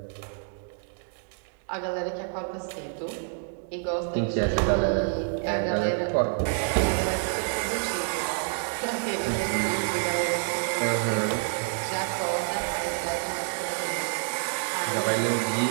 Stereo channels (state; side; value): silent; left; 59 dB below the other